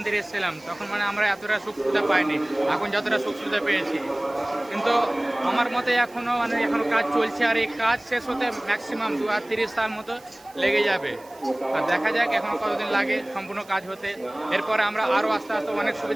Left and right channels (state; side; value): noise; right; hiss, 26 dB below the sound